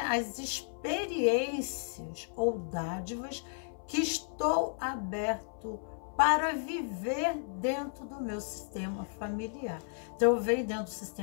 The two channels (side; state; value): right; silent; 55 dB below the other